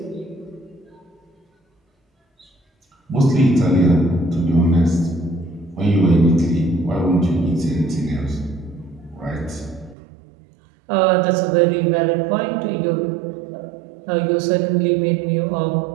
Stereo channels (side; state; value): left; drops out; at 10.0 s